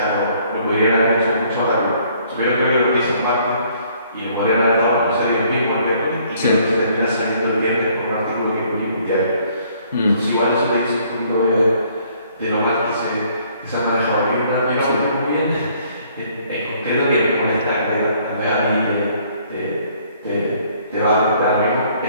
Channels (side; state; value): both; inverted; correlation -0.62